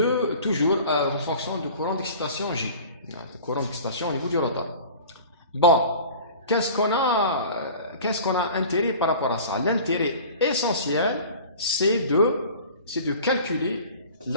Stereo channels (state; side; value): inverted; both; correlation -0.41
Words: fonction du courant d'excitation J. Le courant d'excitation au niveau du rotor. Bon, qu'est-ce qu'on a intérêt par rapport à ça? L'intérêt essentiel, c'est de calculer